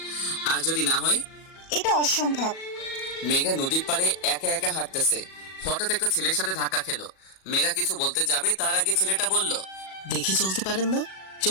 আর যদি না হয়? এটা অসম্ভব। মেঘা নদীর পাড়ে একা একা হাঁটতেছে। হঠাৎ একটা ছেলের সাথে ধাক্কা খেলো। মেঘা কিছু বলতে যাবে, তার আগে ছেলেটা বলল, দেখে চলতে পারেন না?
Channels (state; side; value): late; right; 37 ms